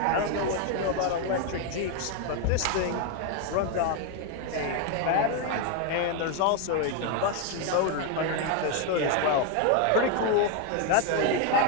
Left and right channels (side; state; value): both; different; correlation 0.01